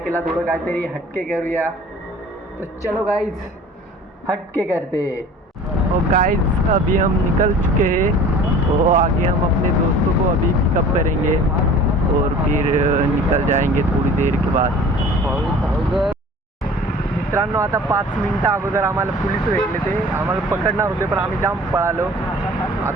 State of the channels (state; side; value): normal; both; correlation 0.45